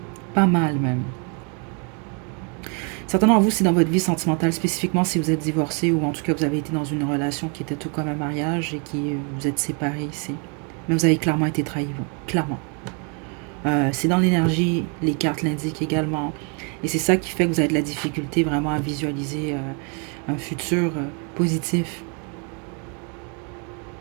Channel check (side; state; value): left; quieter; 36.5 dB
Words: Pas mal même. Certains d'entre vous, c'est dans votre vie sentimentale, spécifiquement si vous êtes divorcé ou en tout cas vous avez été dans une relation qui était tout comme un mariage et qui vous êtes séparés ici. Mais vous avez clairement été trahi, vous. Clairement. C'est dans l'énergie, les cartes l'indiquent également. Et c'est ça qui fait que vous avez de la difficulté vraiment à visualiser un futur positif.